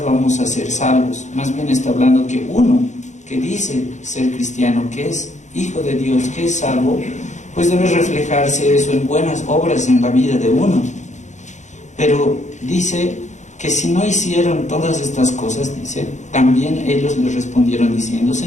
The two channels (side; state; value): right; late; 0.35 ms